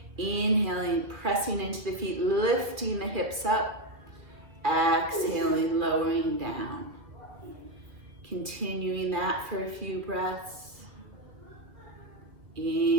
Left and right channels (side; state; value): left; late; 2.6 ms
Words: Inhaling, pressing into the feet, lifting the hips up. Exhaling, lowering down. Continuing that for a few breaths.